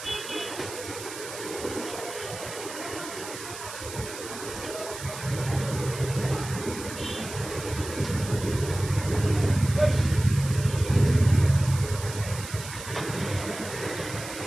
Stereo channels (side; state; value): right; noise; hiss, 11 dB below the sound